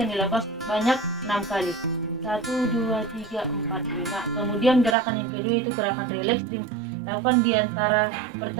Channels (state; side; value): drops out; left; at 5.0 s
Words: dilakukan sebanyak 6 kali. 1, 2, 3, 4, 5. Kemudian gerakan yang kedua itu gerakan rileks, dilakukan di antara